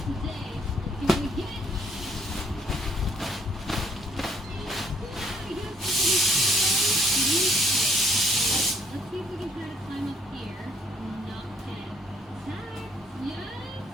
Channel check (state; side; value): normal; both; correlation 0.64